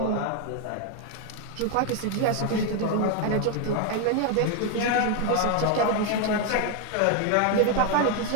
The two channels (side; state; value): both; different; correlation 0.01